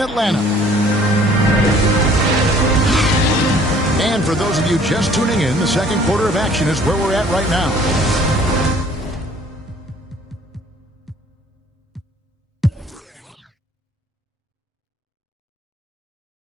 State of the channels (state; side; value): normal; both; correlation 0.55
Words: Atlanta. And for those of you just tuning in, the second quarter of action is where we're at right now.